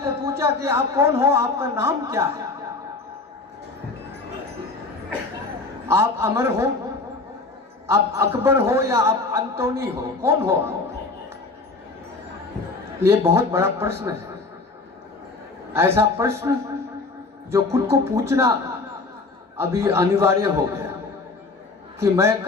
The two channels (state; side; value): quieter; right; 3.7 dB